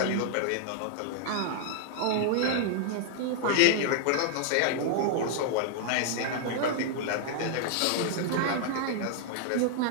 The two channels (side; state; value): both; different; correlation 0.00